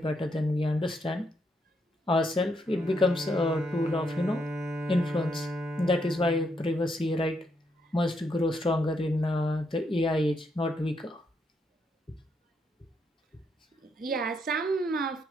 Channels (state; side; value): normal; both; correlation 0.77